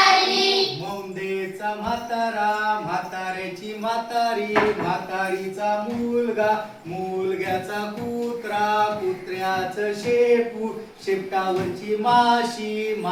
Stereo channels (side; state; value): both; identical; correlation 1.00